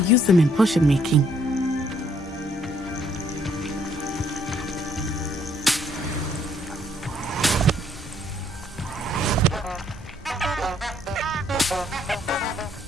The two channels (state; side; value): normal; both; correlation 0.67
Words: them in potion making.